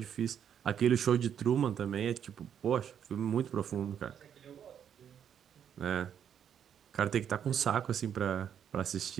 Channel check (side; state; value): left; quieter; 8.8 dB